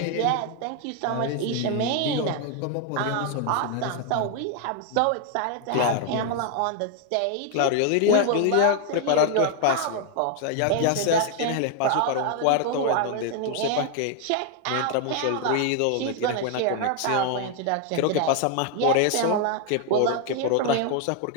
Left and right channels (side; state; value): both; different; correlation 0.00